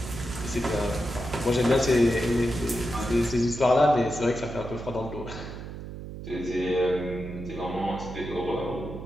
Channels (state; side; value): noise; right; hum, 10 dB below the sound